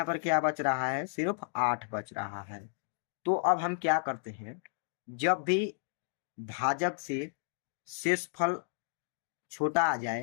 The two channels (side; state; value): right; silent; digital silence